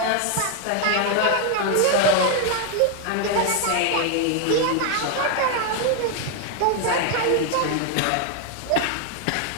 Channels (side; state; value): both; different; correlation 0.01